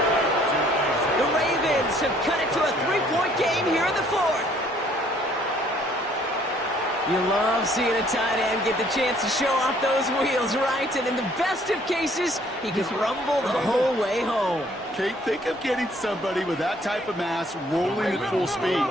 The Ravens have cut it to a 3-point game here in the 4th. You love seeing a tight end get the chance to show off those wheels, right? And in the best of cases, he can rumble the whole way home. Kate, think of getting somebody with that type of mass rolling at full speed.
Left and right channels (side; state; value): both; normal; correlation 0.61